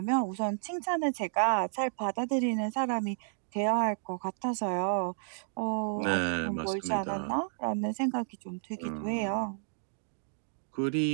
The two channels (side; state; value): left; silent; digital silence